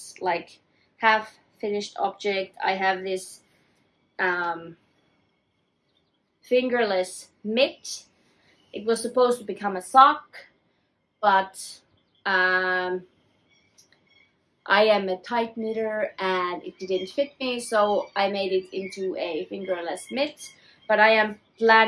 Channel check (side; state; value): both; identical; correlation 1.00